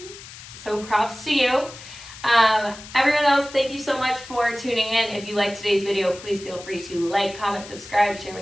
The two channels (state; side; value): noise; left; hiss, 16 dB below the sound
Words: So props to you. Everyone else, thank you so much for tuning in. If you liked today's video, please feel free to like, comment, subscribe, share